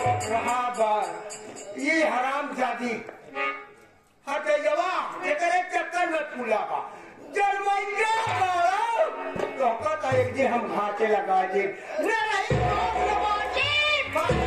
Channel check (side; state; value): both; identical; correlation 1.00